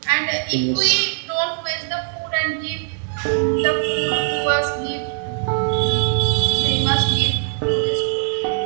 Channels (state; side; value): silent; left; 65 dB below the other